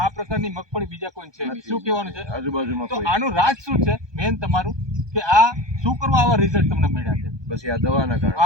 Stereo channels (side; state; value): left; late; 1.2 ms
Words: પ્રકારની મગફળી બીજા કોઈ છે નહીં। શું કહેવાનું છે આજુબાજુમાં? તો આનું રાજ શું છે મેન તમારું, કે આ શું કરવા આવા રિઝલ્ટ તમને મળ્યા છે? બસ આ દવાના કારણે।